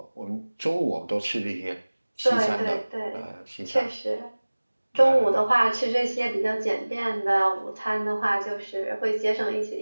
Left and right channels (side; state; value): both; inverted; correlation -1.00